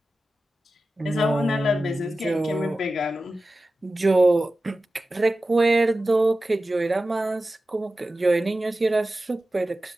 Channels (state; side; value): normal; both; correlation 0.95